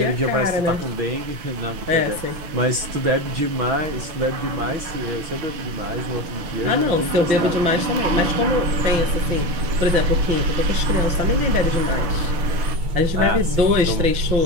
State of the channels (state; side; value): late; left; 6.1 ms